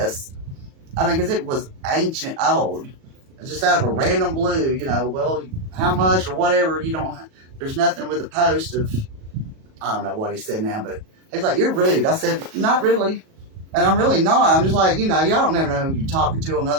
I mean, because it was ancient old. It's just out of a random blue, well, how much or whatever, there's nothing with a post of, I don't know what he said now, but he's like, you're rude. I said, not really. And I'm really not. I'm just like, y'all don't never know who you're talking to on the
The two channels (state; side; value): late; left; 37 ms